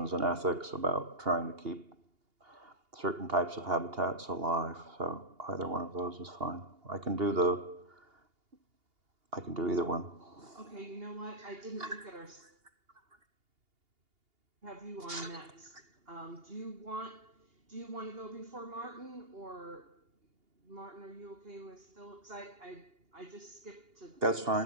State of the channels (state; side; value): late; left; 2.8 ms